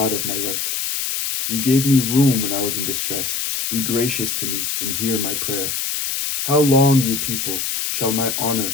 of my right. You gave me room when I was in distress. Be gracious to me and hear my prayer. How long, you people, shall my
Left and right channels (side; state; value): left; noise; hiss, 2 dB below the sound